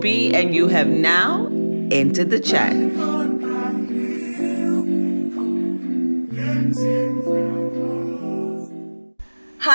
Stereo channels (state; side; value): inverted; both; correlation -1.00